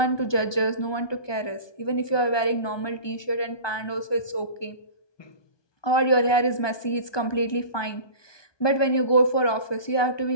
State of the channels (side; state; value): right; late; 1.2 ms